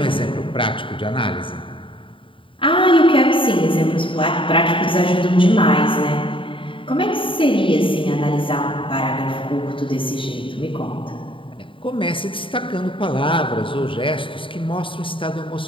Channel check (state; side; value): late; right; 0.25 ms